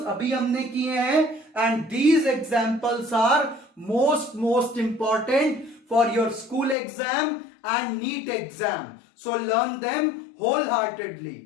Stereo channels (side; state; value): right; drops out; at 6.8 s